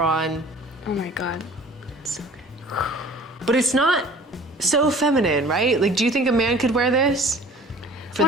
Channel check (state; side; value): normal; both; correlation 0.48